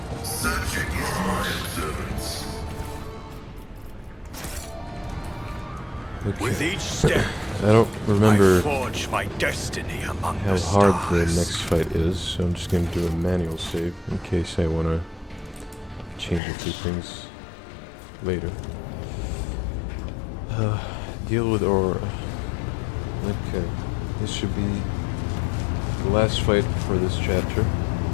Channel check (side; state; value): right; drops out; at 16.4 s